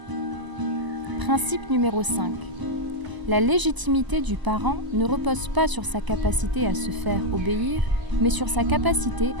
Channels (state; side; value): late; left; 1.0 ms